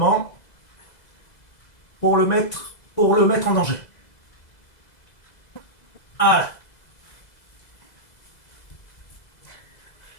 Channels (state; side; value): late; right; 2.0 ms